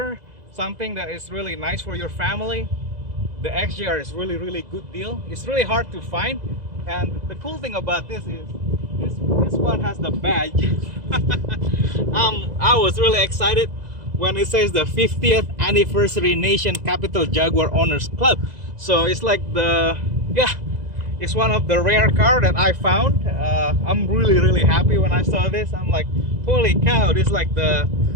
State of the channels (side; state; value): left; late; 2.0 ms